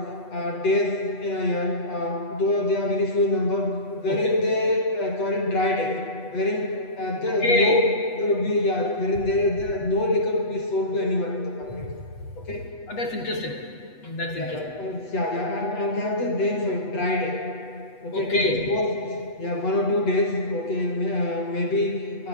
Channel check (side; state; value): right; late; 8.2 ms